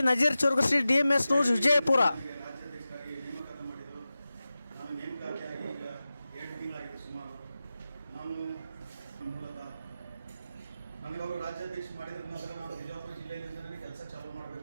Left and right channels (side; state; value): both; inverted; correlation -0.95